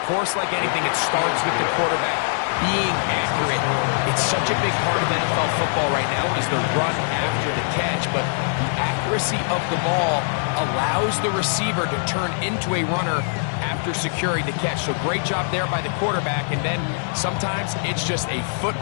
course, like anything, it starts with the quarterback being accurate. It's such a big part of NFL football right now is the run after the catch. But the accuracy of the ball allows the receiver to turn into a runner after securing the catch. So great job there by the quarterback. And then sometimes it's just a foot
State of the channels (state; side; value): silent; right; 64 dB below the other